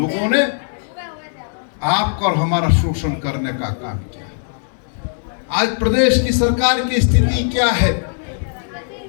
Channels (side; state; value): right; silent; digital silence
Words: ने आपका और हमारा शोषण करने का काम किया। आज प्रदेश की सरकार की स्थिति क्या है?